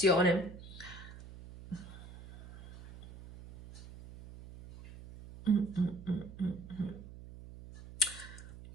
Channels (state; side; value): noise; right; hum, 15 dB below the sound